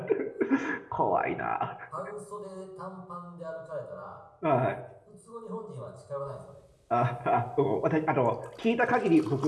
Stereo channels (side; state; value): both; identical; correlation 1.00